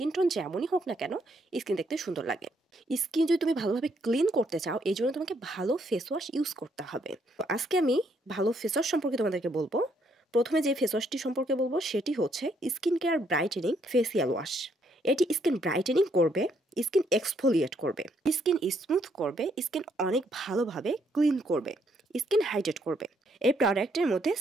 টোন যেমনই হোক না কেন স্কিন দেখতে সুন্দর লাগে। স্কিন যদি তুমি ভালোভাবে ক্লিন করতে চাও এই জন্য তোমাকে ভালো ফেস ওয়াশ ইউজ করতে হবে। তো আজকে আমি ভালো ফেস ওয়াশ সম্পর্কে তোমাদেরকে বলবো। প্রথমে যে ফেস ওয়াশটি সম্পর্কে বলবো সেটি হচ্ছে skin care brightening facial wash. এটি স্কিন ব্রাইটেনিং করবে, স্কিন এক্সফোলিয়েট করবে, স্কিন স্মুথ করবে, স্কিন অনেক ভালোভাবে ক্লিন করবে, স্কিন হাইড্রেট করবে। এই প্রোডাক্টের মধ্যে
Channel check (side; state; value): both; normal; correlation 0.71